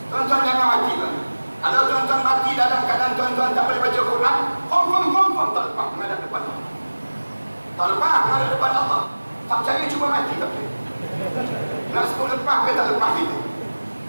Tuan-tuan jangan mati tuan. Kalau tuan-tuan mati dalam keadaan tuan-tuan tak boleh baca Quran, confirm tak lepas menghadap depan Allah. Tak lepas menghadap depan Allah. Tak percaya cuba mati tak percaya. Nak sebut lepas ke tak lepas itu.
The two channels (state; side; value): inverted; both; correlation -1.00